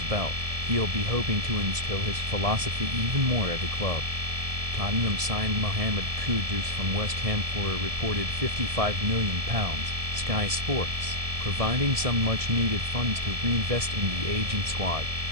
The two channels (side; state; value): left; late; 1.7 ms